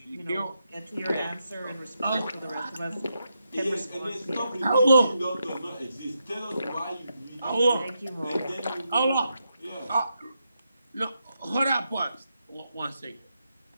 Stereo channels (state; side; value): inverted; both; correlation -0.84